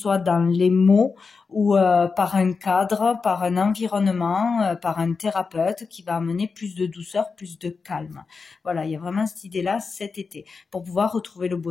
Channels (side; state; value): right; quieter; 4.8 dB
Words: dans les mots ou par un cadre, par un environnement, par un thérapeute qui va amener plus de douceur, plus de calme. Voilà, il y a vraiment cette idée-là cet été, pour pouvoir retrouver le